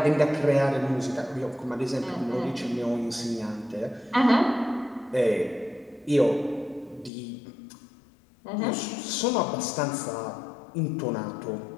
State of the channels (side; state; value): right; drops out; at 7.1 s